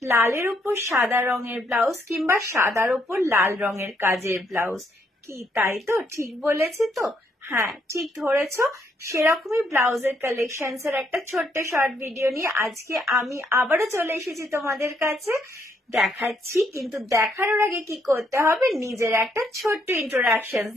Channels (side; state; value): both; normal; correlation 0.73